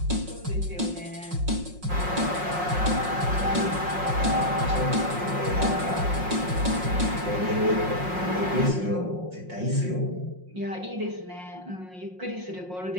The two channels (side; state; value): left; late; 5.5 ms